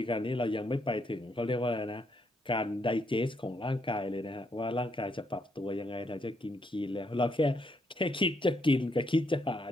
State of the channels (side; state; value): both; normal; correlation 0.75